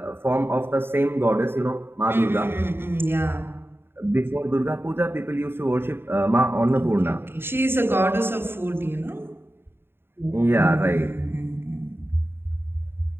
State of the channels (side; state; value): left; late; 0.11 ms